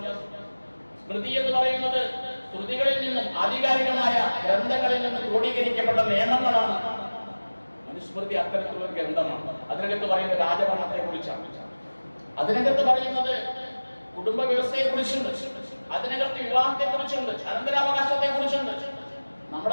സ്മൃതി എന്ന് പറയുന്നത് ശ്രുതികളിൽ നിന്നും ആധികാരികമായ ഗ്രന്ഥങ്ങളിൽ നിന്നും ക്രോഡീകരിക്കപ്പെട്ട നിയമങ്ങളാണ്. മനുസ്മൃതി അത്തരത്തിലുള്ള ഗ്രന്ഥമാണ്. അതിനകത്ത് പറയുന്നത് രാജഭരണത്തെ കുറിച്ചാണ്. അതിനകത്ത് പറയുന്നത് കുടുംബ വ്യവസ്ഥയെ കുറിച്ചുണ്ട്. അതിനകത്ത് വിവാഹത്തെ കുറിച്ചുണ്ട്, അനന്തരാവകാശത്തെ കുറിച്ചുണ്ട്.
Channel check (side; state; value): both; inverted; correlation -1.00